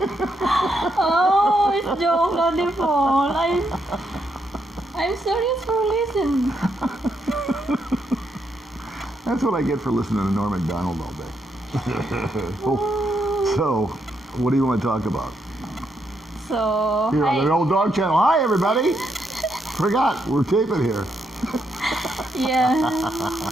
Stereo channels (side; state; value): both; normal; correlation 0.78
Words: Oh, it's Joe, not the phone. I'm serious for listening. That's what I get for listening to Norm Macdonald all day. So, what do you want to talk about? So, Here on the hi. Old Dog Channel. Hi, everybody. Forgot, we're taping here. Yeah.